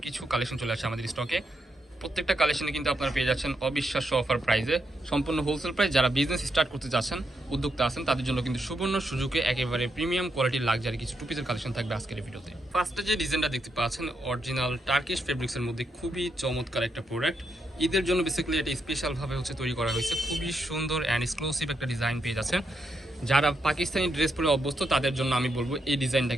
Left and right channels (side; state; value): both; normal; correlation 0.81